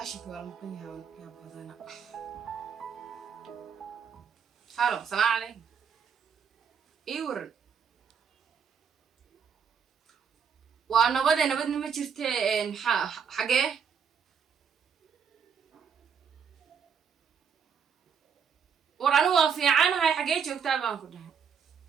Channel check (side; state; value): left; quieter; 6.9 dB